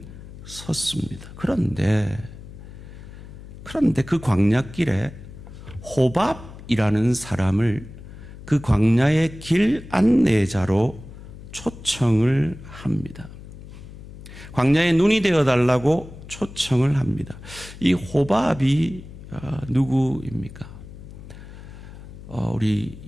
섰습니다. 그런데 그 광야길에 호밥이라는 사람을 그 광야의 길 안내자로 초청을 합니다. 광야에 눈이 되어달라고 초청을 합니다. 이 호밥이 누구입니까? 우리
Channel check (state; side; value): noise; left; hum, 15 dB below the sound